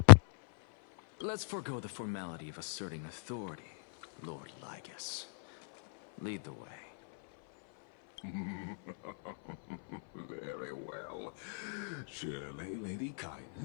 Let's forego the formality of asserting authority, Lord Lygus. Lead the way. Very well. Surely Lady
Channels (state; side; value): silent; right; 54 dB below the other